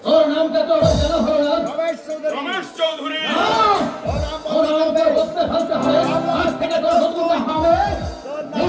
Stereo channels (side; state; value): both; identical; correlation 1.00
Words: তোর নামটা তো জানা হলো না। রমেশ চৌধুরী রমেশ চৌধুরী, ওর নাম ওর বলতে নামটা হবে। বলতে ফেলতে হবে। আজ থেকে তোর নতুন হবে তোর নাম